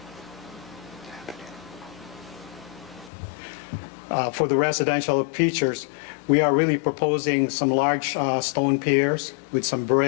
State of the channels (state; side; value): drops out; right; at 3.1 s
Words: for the residential features, we are really proposing some large stone piers with some